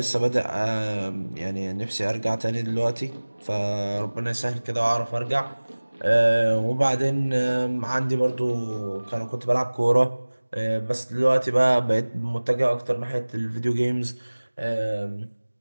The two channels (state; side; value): inverted; both; correlation -1.00